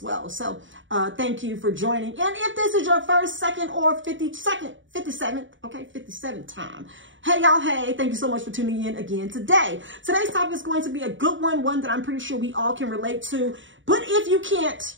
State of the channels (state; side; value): late; left; 0.55 ms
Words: So thank you for joining. And if this is your first, second, or 57th time, hey y'all, hey, thank you so much for tuning in again today. Today's topic is going to be a good one that I'm pretty sure we all can relate to. But if you can't,